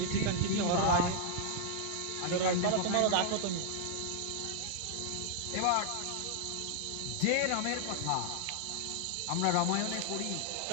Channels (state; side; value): different; both; correlation -0.01